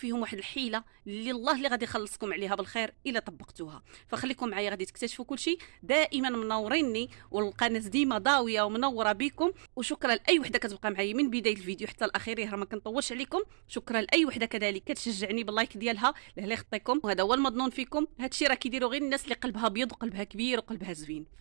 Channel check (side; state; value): left; silent; digital silence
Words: واحد الحيله اللي غادي يخلصكم عليها بالخير الا طبقتوها. فخليكم معايا غادي تكتشفوا كل شيء. دائما منوريني والقناه ديما ضاويه ومنوره بكم، وشكرا لاي وحده كتبقى معايا من بدايه الفيديو حتى الاخير، راه ما كنطولش عليكم. شكرا لاي وحده كذلك كتشجعني باللايك ديالها لهلا يخطيكم، وهذا هو المظنون فيكم. هادشي راه كيديروا غير الناس اللي قلبها ابيض وقلبها كبير وقلبها زوين،